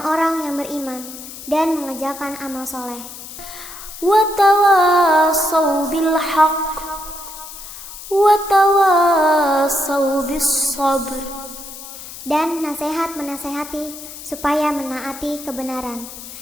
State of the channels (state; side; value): noise; left; hiss, 13 dB below the sound